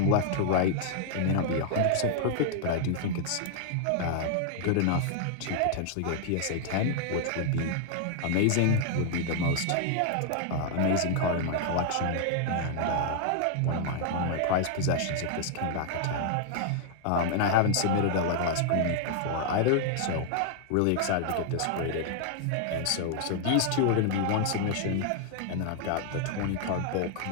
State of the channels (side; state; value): both; different; correlation 0.00